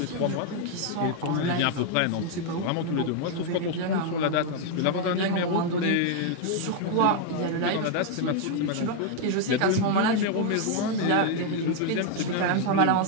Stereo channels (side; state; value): both; different; correlation 0.00